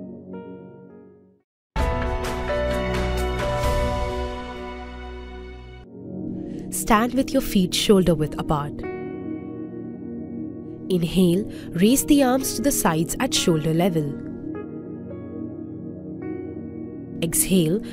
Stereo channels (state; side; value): identical; both; correlation 1.00